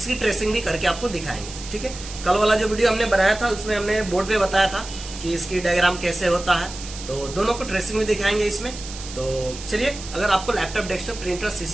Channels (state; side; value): noise; right; hiss, 12 dB below the sound